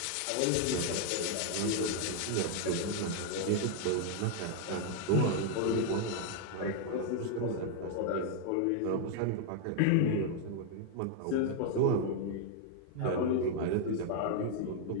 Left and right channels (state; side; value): different; both; correlation 0.00